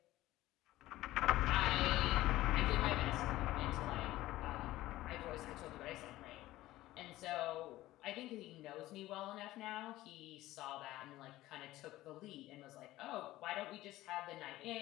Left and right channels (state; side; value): quieter; right; 16.3 dB